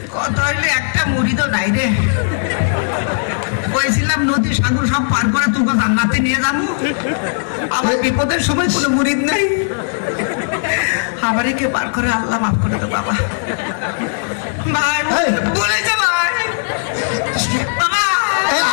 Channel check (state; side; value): silent; right; digital silence